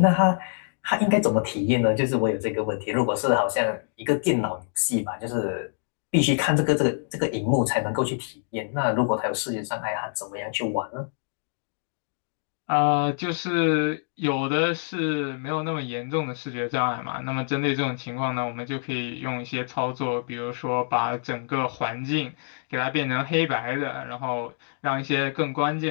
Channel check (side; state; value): right; silent; digital silence